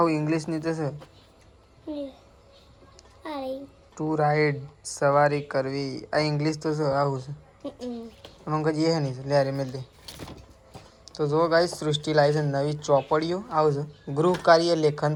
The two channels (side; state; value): both; identical; correlation 1.00